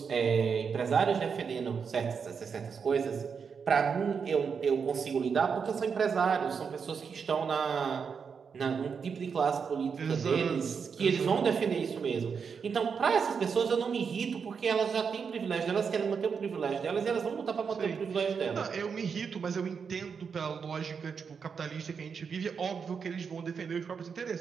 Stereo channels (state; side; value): quieter; left; 6.1 dB